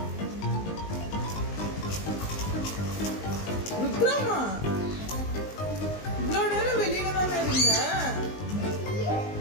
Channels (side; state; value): right; late; 19 ms